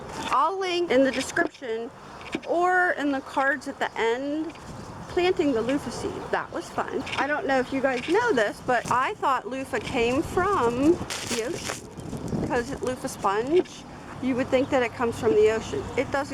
I'll link in the description or in the cards at the end planting the loofah seed. That was fun. I don't know if you guys know this, but I thought loofah came from the ocean because it's Luffa Sponge. You would think that it comes from the ocean. It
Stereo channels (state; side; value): identical; both; correlation 1.00